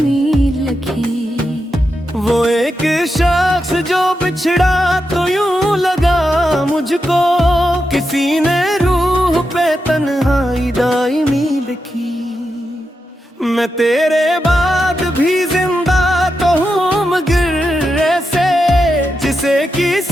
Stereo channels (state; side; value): normal; both; correlation 0.87